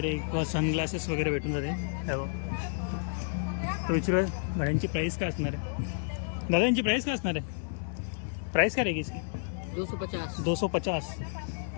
किंवा सनग्लासेस वगैरे भेटून जाते. तर विचारू घड्यांची प्राईस काय असणार आहे? दादा यांची प्राईस काय असणार आहे? प्राईस काय रहेगी इसकी? 250.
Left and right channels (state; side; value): silent; right; digital silence